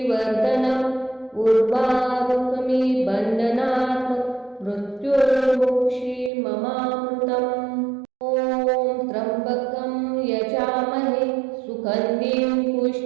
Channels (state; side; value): drops out; left; at 6.3 s